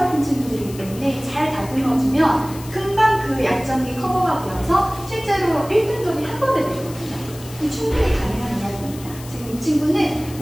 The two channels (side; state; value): left; noise; hiss, 17 dB below the sound